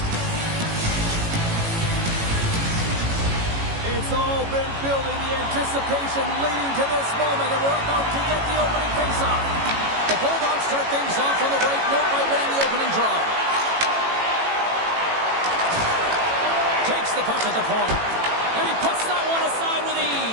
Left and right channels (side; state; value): left; late; 18 ms